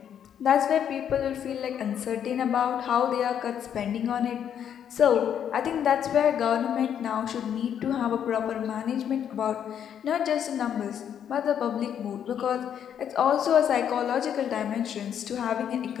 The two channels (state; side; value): quieter; right; 9.0 dB